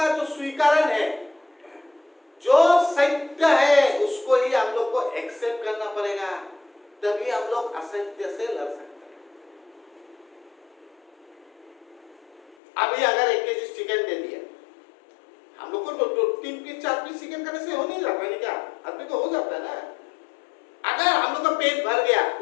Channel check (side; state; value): right; drops out; at 12.6 s